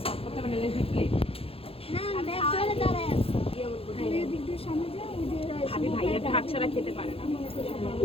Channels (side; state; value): right; late; 0.27 ms